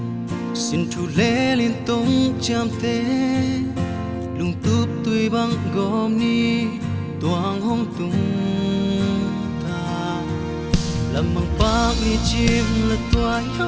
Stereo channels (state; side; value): identical; both; correlation 1.00